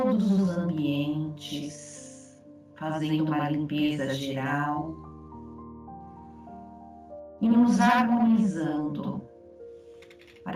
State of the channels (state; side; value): identical; both; correlation 1.00